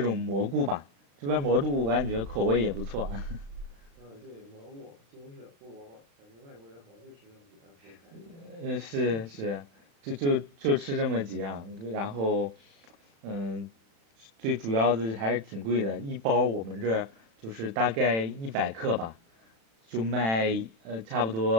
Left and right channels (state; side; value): late; left; 36 ms